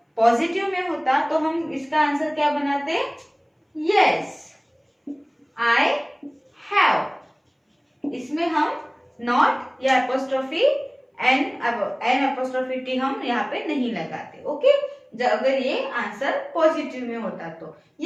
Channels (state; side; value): identical; both; correlation 1.00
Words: पॉजिटिव में होता तो हम इसका आंसर क्या बनाते, यस आई हैव, इसमें हम नॉट या एपोस्ट्रोफी एन एपोस्ट्रोफी टी हम यहाँ पे नहीं लगाते। ओके, अगर ये आंसर पॉजिटिव में होता तो